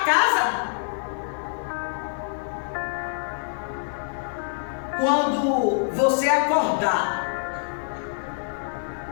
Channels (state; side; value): silent; right; 61 dB below the other